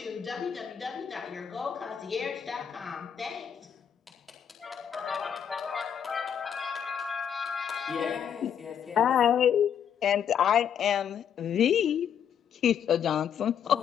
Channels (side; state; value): right; quieter; 8.4 dB